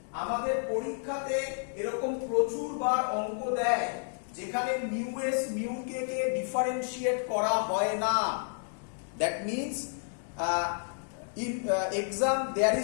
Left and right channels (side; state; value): right; silent; digital silence